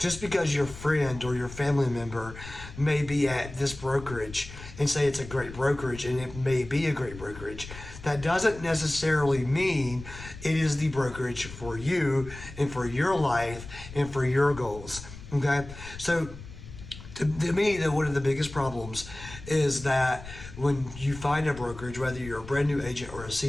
because your friend or your family member may be at this brokerage and say it's a great brokerage, and it may be a great brokerage, that doesn't necessarily mean it is the brokerage for you and for your life and for your goals, okay? So to me, one of the biggest problems is that when you find a brokerage, whether you're a brand new agent or a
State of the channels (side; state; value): left; noise; rumble, 14 dB below the sound